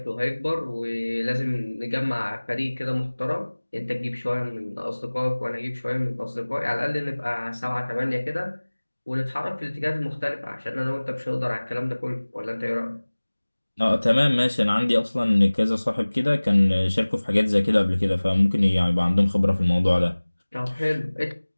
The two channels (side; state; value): both; inverted; correlation -1.00